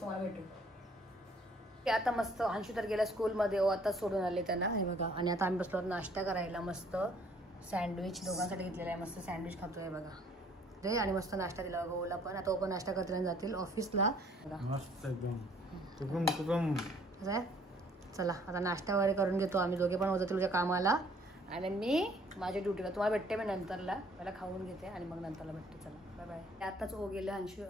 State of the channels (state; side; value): normal; both; correlation 0.60